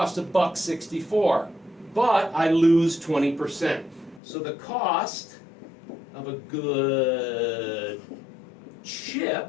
$1.64, but I lose 20%. So the cost of a good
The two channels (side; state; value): right; drops out; at 4.2 s